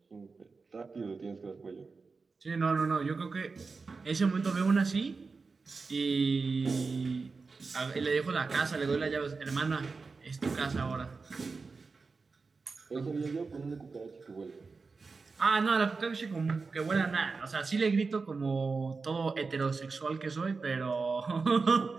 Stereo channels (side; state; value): left; quieter; 4.4 dB